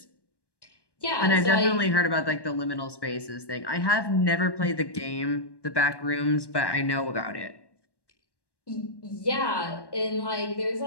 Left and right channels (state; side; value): late; right; 1.1 ms